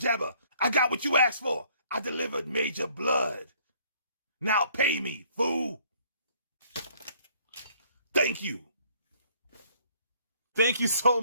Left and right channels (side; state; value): both; inverted; correlation -0.61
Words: I got what you asked for. I delivered Major Bludd. Now pay me, fool. Thank you. Thank you so